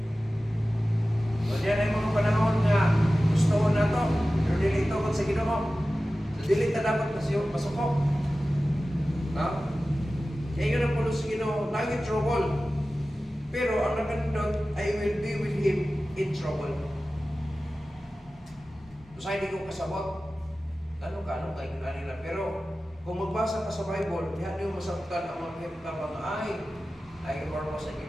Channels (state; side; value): normal; both; correlation 0.95